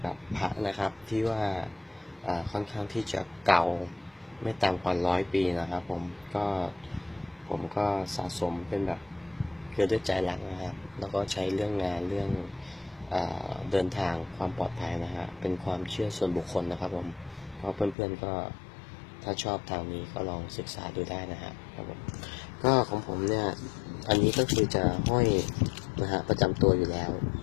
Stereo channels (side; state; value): right; drops out; at 17.9 s